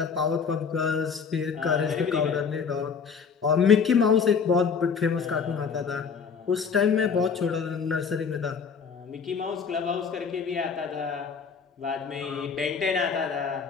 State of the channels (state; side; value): quieter; right; 6.0 dB